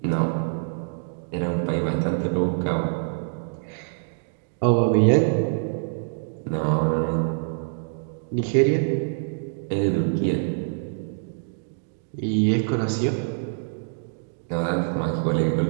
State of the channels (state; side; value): silent; left; digital silence